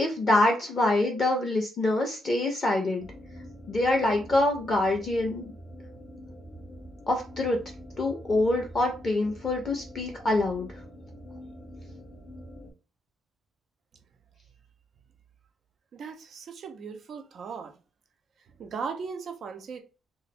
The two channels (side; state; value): both; normal; correlation 0.80